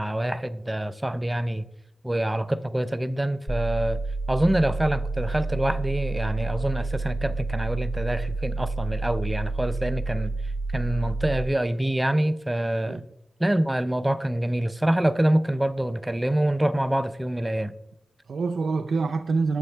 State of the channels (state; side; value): normal; both; correlation 0.97